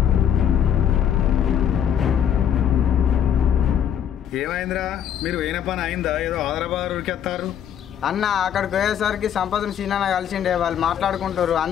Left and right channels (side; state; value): right; quieter; 9.3 dB